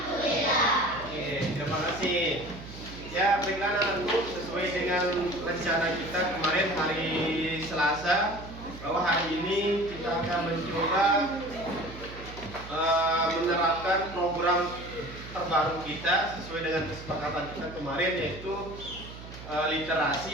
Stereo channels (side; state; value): right; noise; hum, 14 dB below the sound